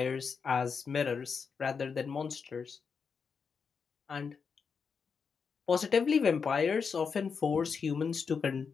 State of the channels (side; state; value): right; quieter; 5.8 dB